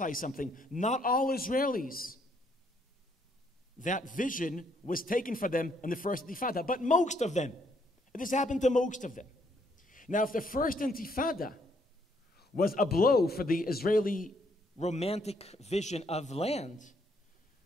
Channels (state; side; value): normal; both; correlation 0.70